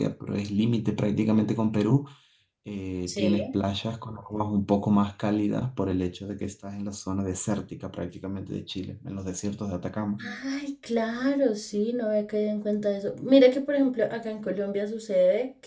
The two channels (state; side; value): identical; both; correlation 1.00